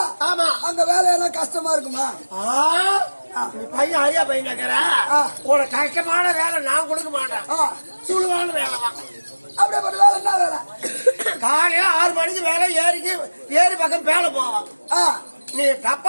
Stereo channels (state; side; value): inverted; both; correlation -1.00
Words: ஆமா அங்க வேலையெல்லாம் கஷ்டமா இருக்குமா? பையன் ஐயா பையன் கேக்குற ஒரு கஷ்டமான வேலை நான் கொடுக்க மாட்டேன். சுழுவான வேலை தான். அப்படியே வேலை என்ன வேலை? காலையில 6 மணிக்கு வேலை ஏரி பக்கம் வேலை போவான். நீ